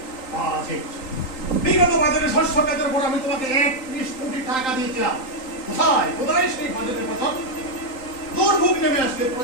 বাজেট, বিগত বাজারে শস্য খাতের উপর আমি তোমাকে 31 কোটি টাকা দিয়েছিলাম। কোথায় কোথায় সেই বাজেটের কথা? দুর্ভোগ নেমে আসলে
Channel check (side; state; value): right; late; 3.8 ms